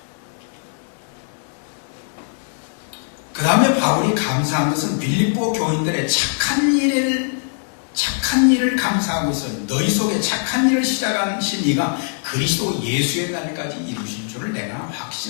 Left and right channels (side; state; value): right; silent; 65 dB below the other